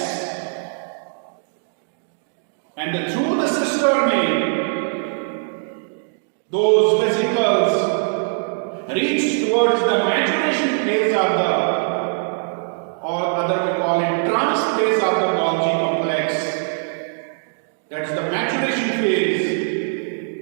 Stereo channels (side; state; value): left; silent; digital silence